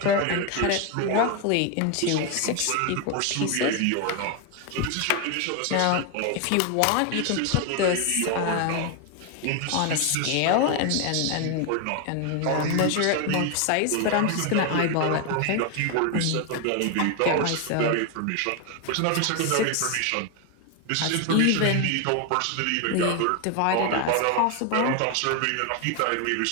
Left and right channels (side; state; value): both; different; correlation 0.01